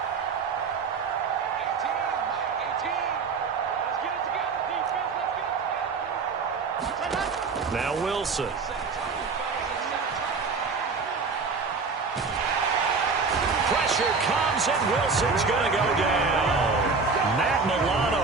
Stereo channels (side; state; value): left; quieter; 4.7 dB